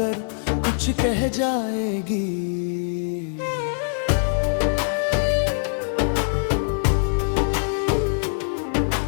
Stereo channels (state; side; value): silent; right; digital silence